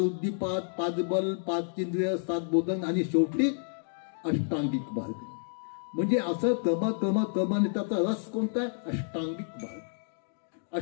5 बल, 5 इंद्रिय, 7 बोधन आणि शेवटी अष्टांगिक मार्ग. म्हणजे असं क्रमाने त्याचा रस कोणता आहे? अष्टांगिक मार्ग.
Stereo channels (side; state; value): right; silent; digital silence